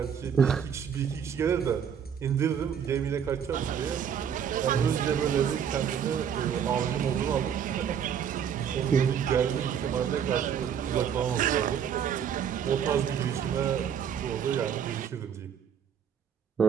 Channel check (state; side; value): quieter; left; 8.1 dB